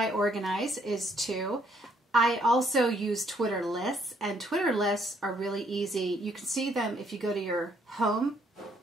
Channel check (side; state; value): both; normal; correlation 0.68